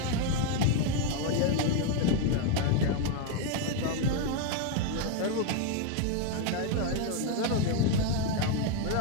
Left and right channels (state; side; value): different; both; correlation 0.01